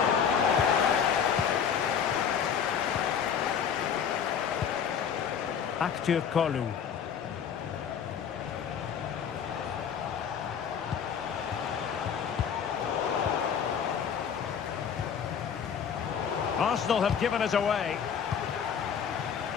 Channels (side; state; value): right; quieter; 7.6 dB